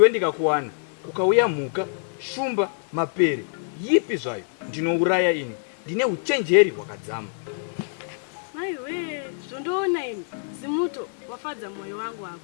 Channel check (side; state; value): right; silent; digital silence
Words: ndikakuwana kukauya mhuka, shumba, mapere, yipi zvayo ndinouraya ini. Ndine uchenjeri hwakadzama. Maiwe, zvondoona ini zimuto wafadza mwoyo wangu